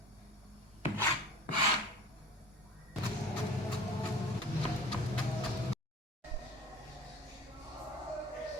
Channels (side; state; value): both; normal; correlation 0.42